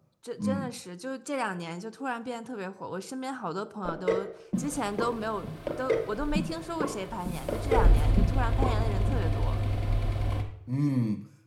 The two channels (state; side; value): identical; both; correlation 1.00